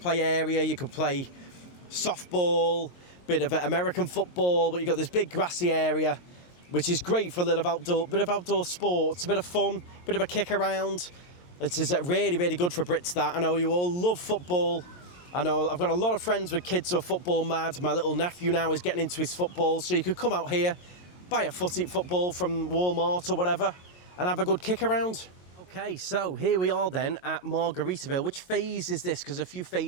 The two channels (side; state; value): right; late; 22 ms